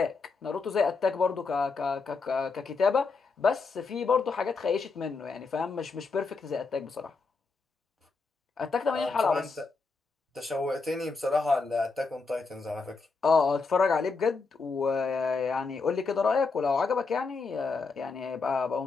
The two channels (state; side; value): quieter; right; 4.3 dB